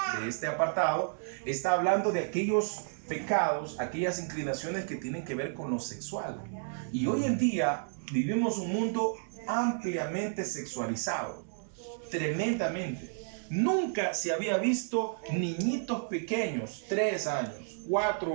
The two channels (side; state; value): left; silent; digital silence